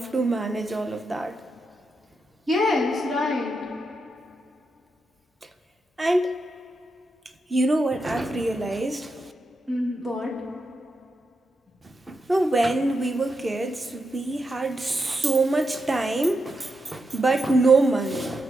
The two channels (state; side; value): normal; both; correlation 0.85